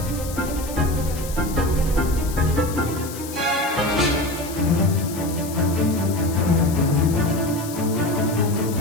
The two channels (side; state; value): left; noise; hiss, 13 dB below the sound